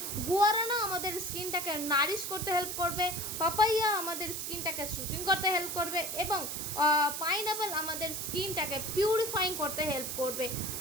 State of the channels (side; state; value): right; noise; hiss, 4 dB below the sound